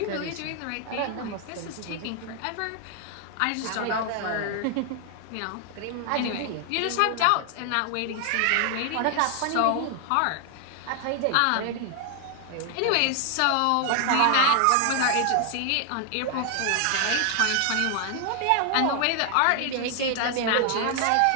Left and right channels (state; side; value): different; both; correlation 0.00